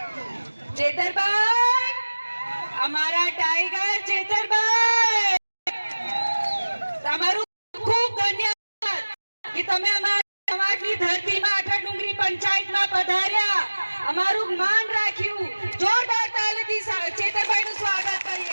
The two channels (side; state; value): both; inverted; correlation -1.00